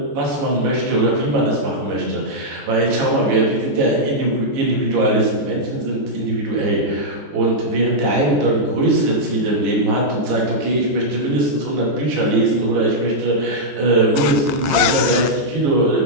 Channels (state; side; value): late; left; 13 ms